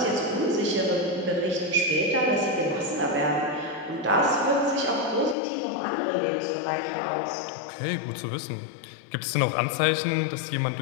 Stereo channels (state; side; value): drops out; right; at 5.4 s